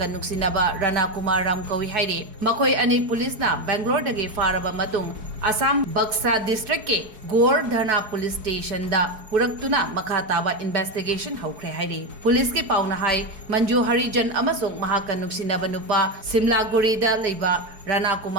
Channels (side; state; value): left; late; 4.7 ms